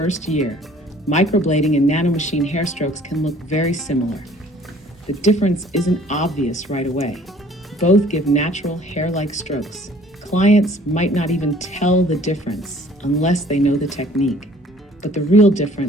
year, microblading and Nano Machine Hair Strokes can look very similar. The difference isn't obvious right away. Both give natural hair-like strokes. Clients might not even tell the difference unless they know the technique. But the real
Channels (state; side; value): normal; both; correlation 0.55